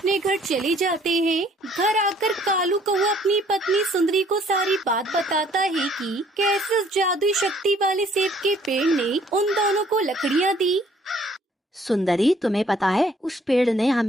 घर चले जाते हैं। घर आकर कालू कौवा अपनी पत्नी सुंदरी को सारी बात बताता है कि कैसे उस जादुई शक्ति वाले सेब के पेड़ ने उन दोनों को लकड़ियाँ दी। सुंदरी, तुम्हें पता है उस पेड़ ने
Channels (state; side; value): normal; both; correlation 0.60